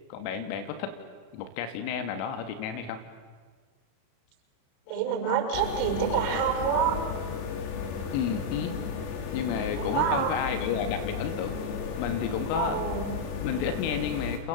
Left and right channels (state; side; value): late; right; 36 ms